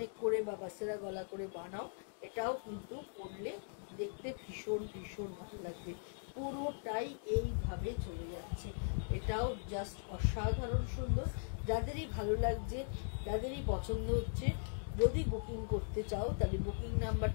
করে বা বাসেরা গলা করে বানাও, এটাও কিন্তু পরলে দেখতে ভীষণ ভীষণ ভালো লাগবে। পুরোটাই এইভাবে চলে যাচ্ছে, এটাও জাস্ট অসাধারণ সুন্দর। যাদেরই ভালো লাগছে, যাদেরই পছন্দ হচ্ছে, যদি বুকিং করতে চাও তাহলে বুকিং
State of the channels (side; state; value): right; silent; digital silence